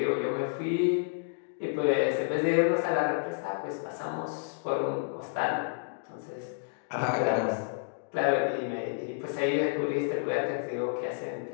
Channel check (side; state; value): right; silent; digital silence